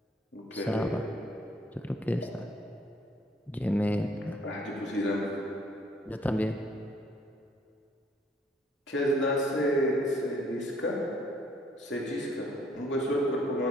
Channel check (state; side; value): normal; both; correlation 0.63